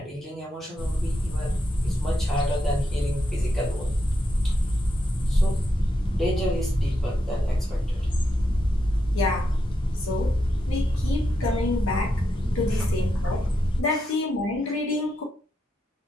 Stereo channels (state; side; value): normal; both; correlation 0.84